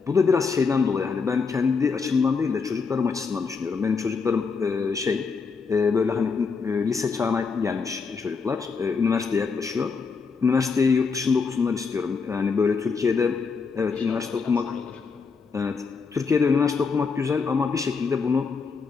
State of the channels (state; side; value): quieter; right; 5.1 dB